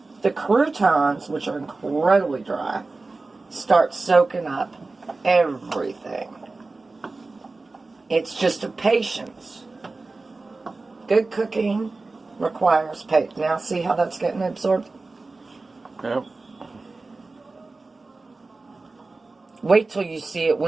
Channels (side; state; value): left; quieter; 3.5 dB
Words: the croutons, which are incredibly dry, start soaking up everything. It's just a patience. Good cooking requires patience. Now see how that's getting absorbed? Yep. Wait till you see it